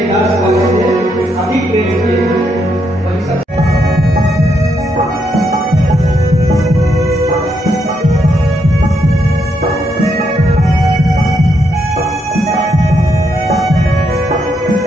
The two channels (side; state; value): both; normal; correlation 0.78